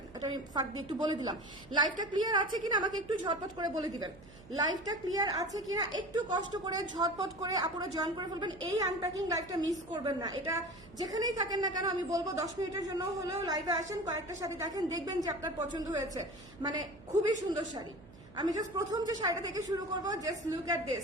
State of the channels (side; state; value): right; noise; hum, 21 dB below the sound